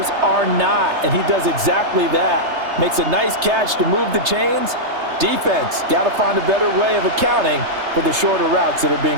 are not, and he does exactly that. Makes a nice catch to move the chains. Defense, got to find a better way of accounting for the shorter routes that are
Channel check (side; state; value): left; late; 3.3 ms